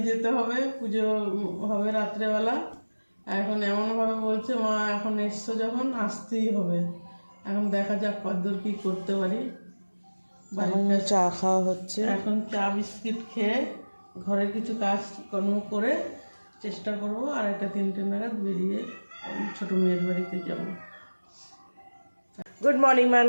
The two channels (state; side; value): inverted; both; correlation -1.00